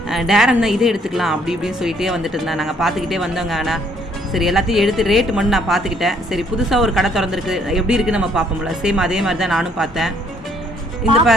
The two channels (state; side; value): normal; both; correlation 0.65